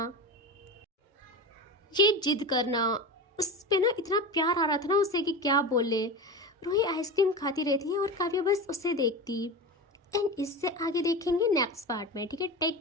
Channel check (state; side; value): normal; both; correlation 0.26